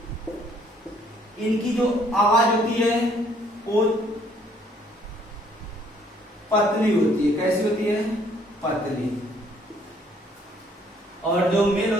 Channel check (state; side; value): normal; both; correlation 0.63